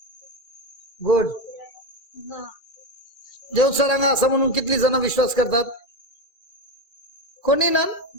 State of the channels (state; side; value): late; right; 2.4 ms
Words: गुड. देवसा रंग असा म्हणून कितली जण विश्वास करतात? कोणी ना.